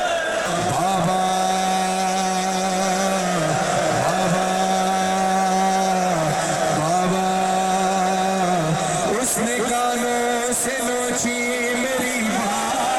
बाबा बाबा बाबा उसने कानों से नोची मेरी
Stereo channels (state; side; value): noise; left; rumble, 29 dB below the sound